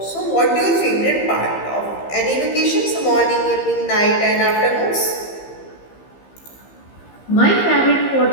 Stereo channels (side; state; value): right; late; 15 ms